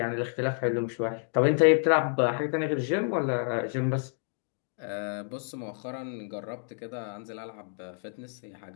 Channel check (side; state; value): right; silent; 58 dB below the other